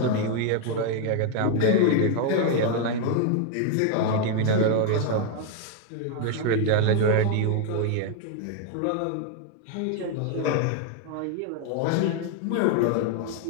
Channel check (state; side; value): different; both; correlation 0.00